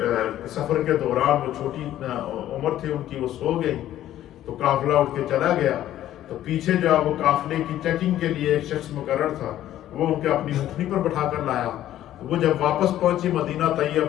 سفر کے دوران وہ چھوٹی عمر تھی ان کی, وہ سو گئی تو قافلہ اٹھ کے چلا گیا. تو پیچھے جو ہے وہ قافلے کی چیکنگ کے لیے ایک شخص مقرر تھا, وہ ان کے اپنی اونٹنی پر بٹھا کر لایا. وہ جب واپس پہنچی مدینہ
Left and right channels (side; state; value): right; quieter; 12.7 dB